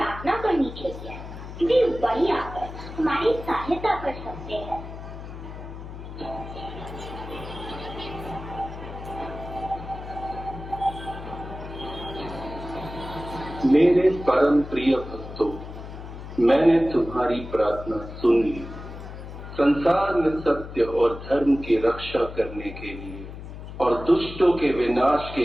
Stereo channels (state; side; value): noise; left; hum, 11 dB below the sound